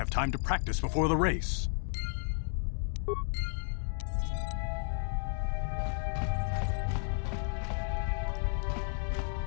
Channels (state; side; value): silent; right; 56 dB below the other